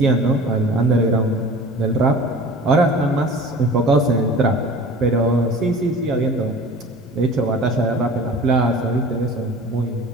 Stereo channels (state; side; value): normal; both; correlation 0.41